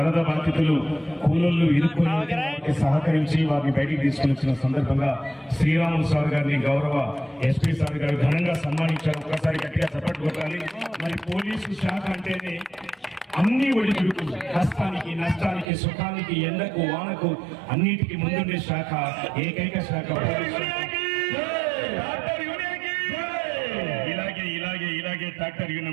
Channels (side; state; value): left; drops out; at 15.7 s